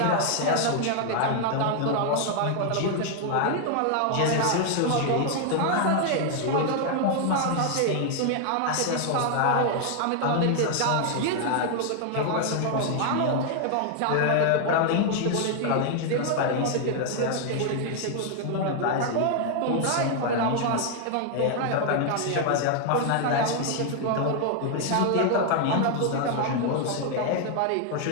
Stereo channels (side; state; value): both; different; correlation 0.00